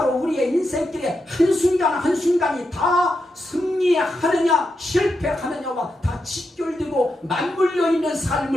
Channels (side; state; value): both; normal; correlation 0.86